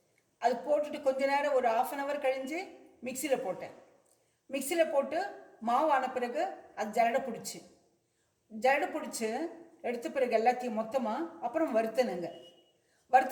அது போட்டுட்டு கொஞ்ச நேரம் ஒரு 1/2 hour கழிஞ்சு மிக்சியில் போட்டேன். மிக்சியில் போட்டு மாவு ஆன பிறகு அது ஜரடை பிடிச்சி எடுத்த பிறகு எல்லாத்தையும் மொத்தமாக அப்புறம் வறுத்தனுங்க.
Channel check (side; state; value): both; identical; correlation 1.00